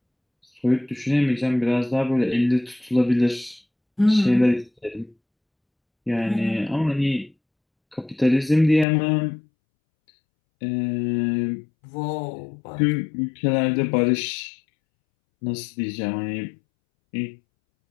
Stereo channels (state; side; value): drops out; right; at 8.8 s